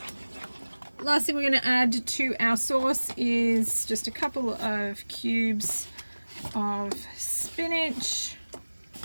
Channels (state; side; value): inverted; both; correlation -1.00